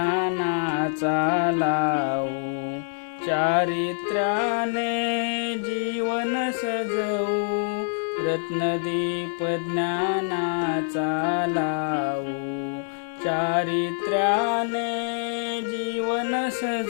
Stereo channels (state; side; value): silent; right; 61 dB below the other